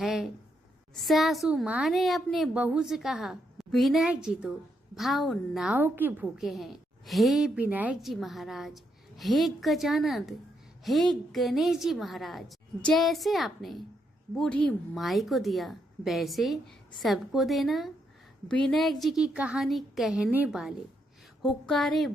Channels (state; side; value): normal; both; correlation 0.78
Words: सासू माँ ने अपने बहू से कहा, विनायक जी तो भाव नाव के भूखे हैं। हे विनायक जी महाराज, हे गजानंद, हे गणेश जी महाराज, जैसे आपने बूढ़ी माई को दिया वैसे सबको देना। विनायक जी की कहानी कहने वाले, हुक्कारे